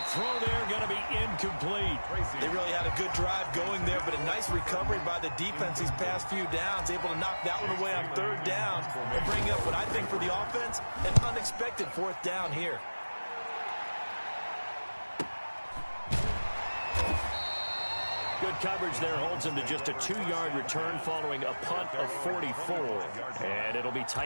throw there going to be incomplete. They really had a good drive going there, but a nice recovery by the defense these past few downs, able to knock that one away on 3rd down and bring up what I think for the offense, an unexpected 4th down here. Good coverage there holds him to just a 2-yard return following a punt of 44. And it'll be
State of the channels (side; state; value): both; inverted; correlation -1.00